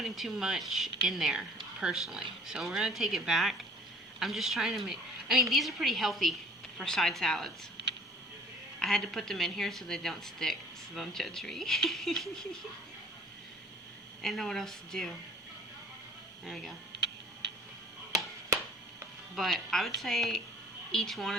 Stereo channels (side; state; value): both; normal; correlation 0.51